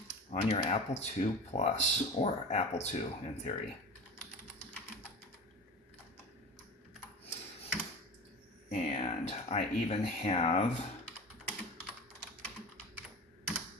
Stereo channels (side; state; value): both; normal; correlation 0.32